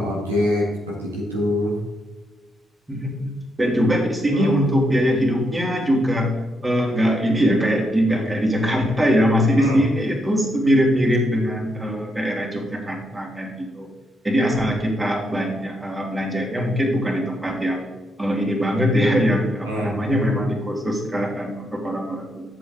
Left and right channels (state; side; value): normal; both; correlation 0.79